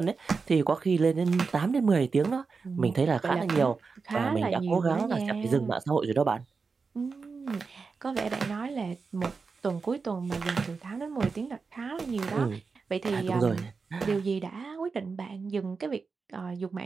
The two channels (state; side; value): quieter; left; 4.8 dB